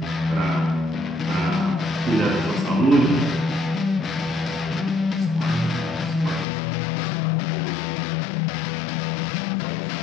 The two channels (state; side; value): drops out; right; at 6.5 s